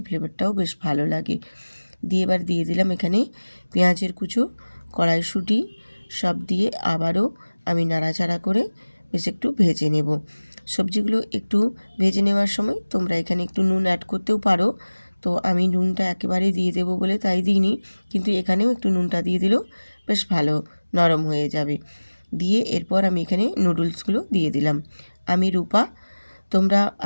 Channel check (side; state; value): both; inverted; correlation -1.00